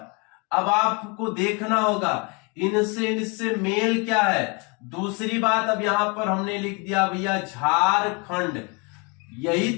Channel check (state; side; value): quieter; right; 31.4 dB